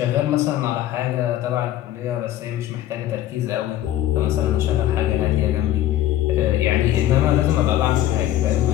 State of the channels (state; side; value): quieter; right; 13.0 dB